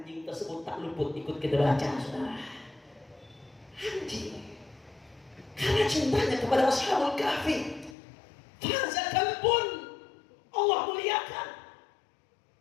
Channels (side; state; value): right; drops out; at 8.0 s